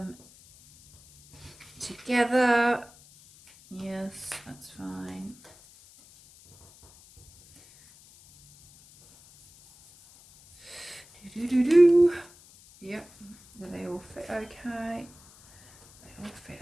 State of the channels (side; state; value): left; noise; hiss, 25 dB below the sound